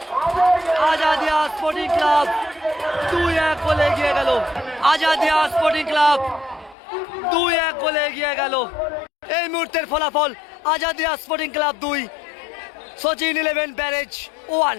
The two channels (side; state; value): right; drops out; at 6.8 s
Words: Azadia sporting club 2-1 গোলে এগিয়ে গেল। আজাদিয়া স্পোর্টিং ক্লাব 2-1 গোলে এগিয়ে গেল। এই মুহূর্তের ফলাফল Azadia sporting club 2, Sachin 11 barrage 1।